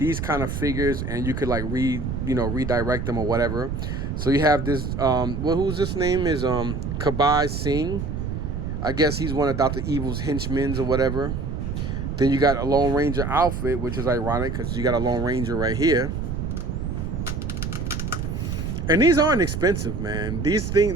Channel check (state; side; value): noise; right; rumble, 3 dB below the sound